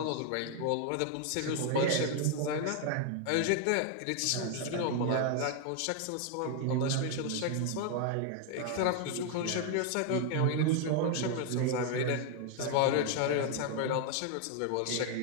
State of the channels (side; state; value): both; different; correlation 0.00